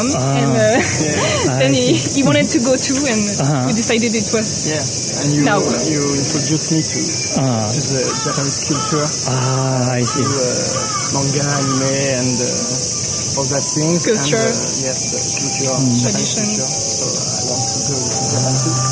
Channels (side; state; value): both; identical; correlation 1.00